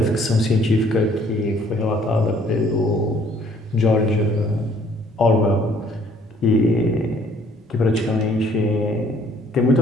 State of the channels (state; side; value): normal; both; correlation 0.60